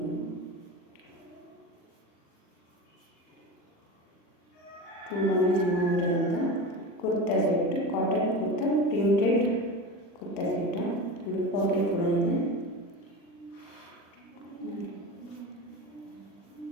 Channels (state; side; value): late; right; 40 ms